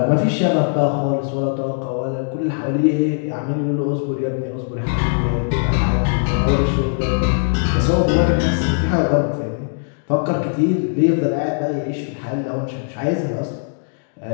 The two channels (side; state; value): right; silent; digital silence